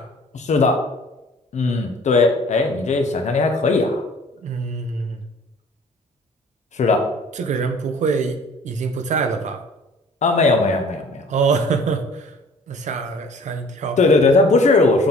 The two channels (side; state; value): both; normal; correlation 0.51